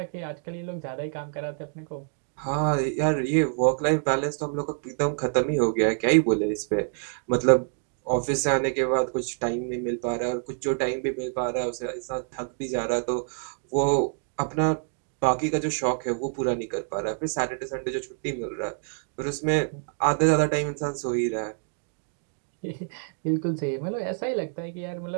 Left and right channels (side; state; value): left; silent; 59 dB below the other